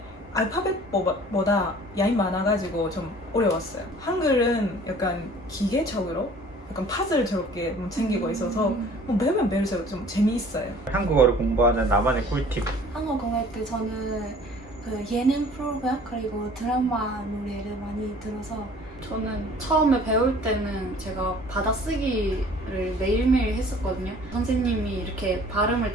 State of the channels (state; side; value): normal; both; correlation 0.50